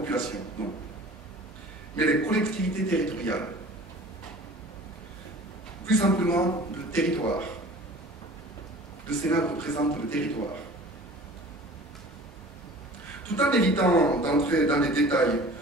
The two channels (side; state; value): both; normal; correlation 0.44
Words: non, mais les collectivités territoriales. Plus simplement, le territoire. Le Sénat représente le territoire. Tout en évitant d'entrer dans les détails,